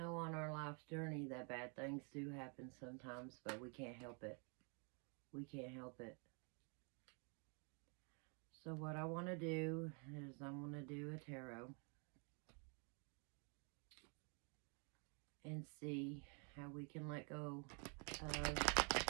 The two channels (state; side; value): quieter; left; 37.9 dB